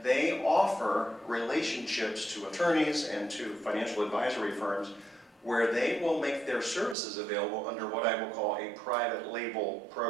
they offer relationships to attorneys and to financial advisory firms where they will make their services available under what I will call a private label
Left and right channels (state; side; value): drops out; left; at 7.0 s